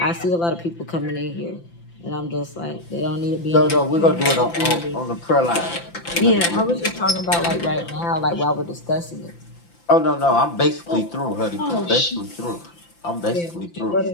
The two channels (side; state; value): right; late; 5.9 ms